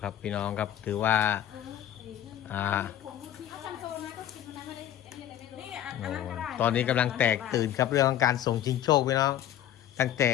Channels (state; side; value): quieter; right; 11.4 dB